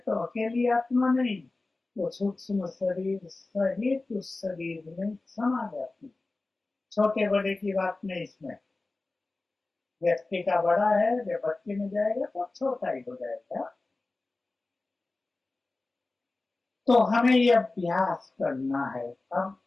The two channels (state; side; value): quieter; right; 3.3 dB